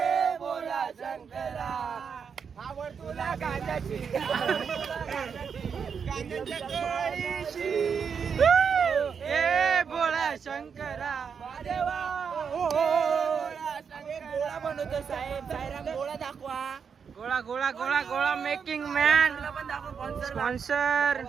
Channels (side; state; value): left; quieter; 6.5 dB